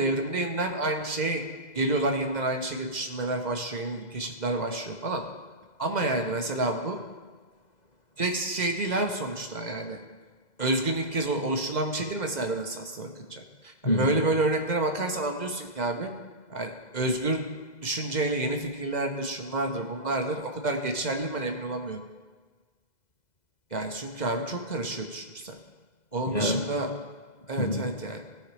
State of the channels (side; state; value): right; late; 2.0 ms